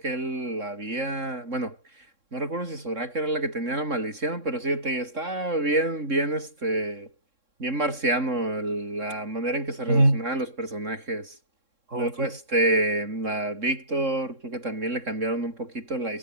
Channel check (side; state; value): left; late; 3.6 ms